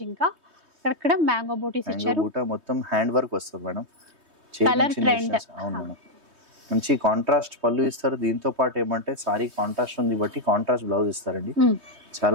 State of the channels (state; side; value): late; left; 3.2 ms